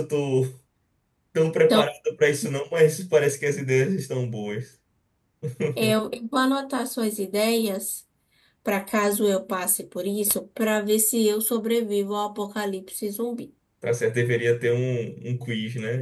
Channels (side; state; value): both; identical; correlation 1.00